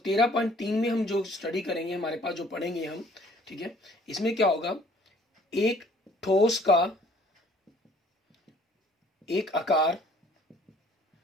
में हम जो स्टडी करेंगे, हमारे पास जो पढ़ेंगे हम, ठीक है, इसमें क्या होगा, एक ठोस का एक आकार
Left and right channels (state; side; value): normal; both; correlation 0.57